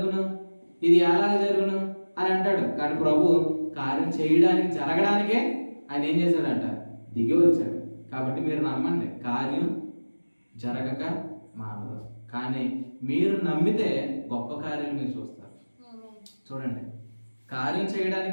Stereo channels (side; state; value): both; inverted; correlation -1.00